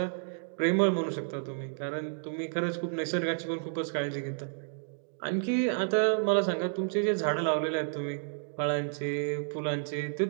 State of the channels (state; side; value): silent; left; digital silence